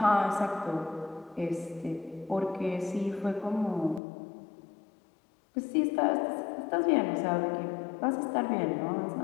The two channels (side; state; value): right; drops out; at 4.0 s